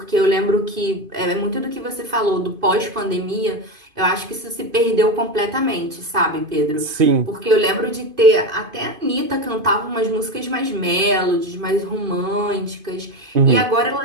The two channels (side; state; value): left; late; 2.5 ms